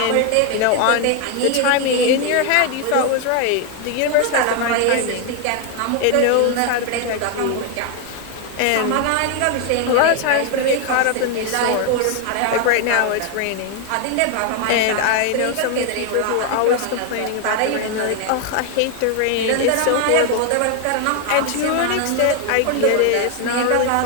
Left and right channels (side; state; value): both; different; correlation 0.01